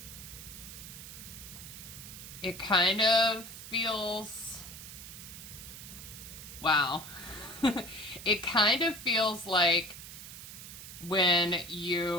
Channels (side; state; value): right; noise; hiss, 12 dB below the sound